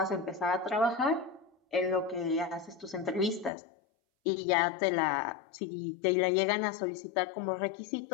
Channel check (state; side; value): drops out; right; at 3.5 s